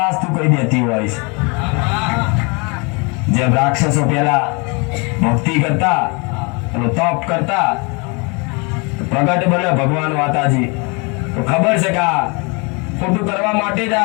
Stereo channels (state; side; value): quieter; right; 30.9 dB